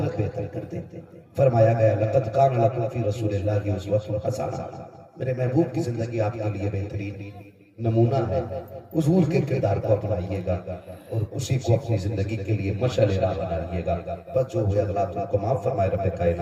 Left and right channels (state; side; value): identical; both; correlation 1.00